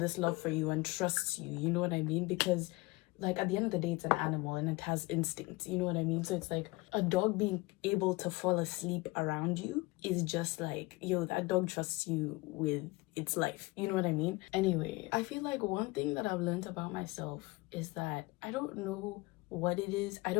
love for you and trusts you, you know what I mean? Because like at the end of the day, it's an animal and it has instincts, you know what I mean? So it's like a dog being able to fall asleep around you is just like, yo, that dog trusts you with its life, you know what I mean? Anyway, I feel like one thing that I've learned about myself is that I don't know what it is. I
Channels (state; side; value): quieter; right; 23.0 dB